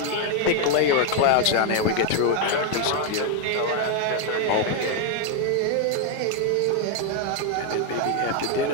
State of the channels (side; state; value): both; different; correlation 0.01